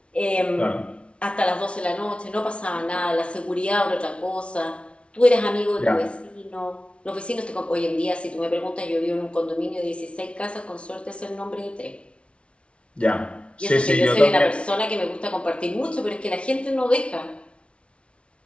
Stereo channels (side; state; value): right; late; 0.060 ms